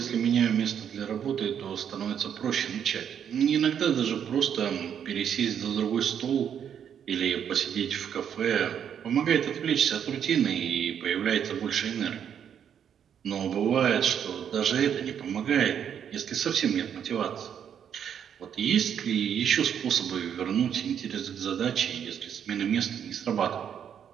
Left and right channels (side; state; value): left; quieter; 8.5 dB